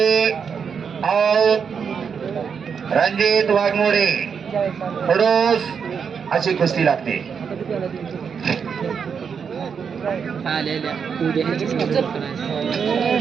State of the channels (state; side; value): quieter; left; 6.6 dB